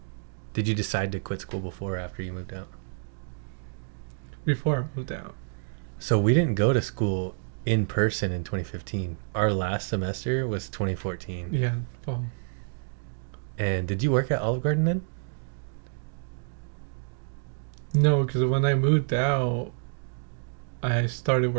did you decide to quit school before or after you moved out? Before I moved out. So we didn't go to school in person in 2015. Our last semester was 2014. Yeah, fall. And did you work at Olive Garden then? No, because when I moved out, I started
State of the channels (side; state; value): left; silent; digital silence